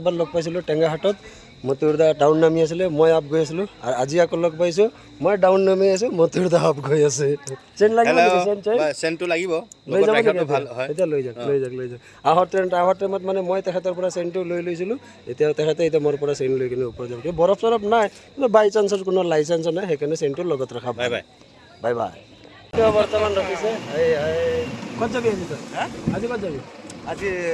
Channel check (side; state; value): both; identical; correlation 1.00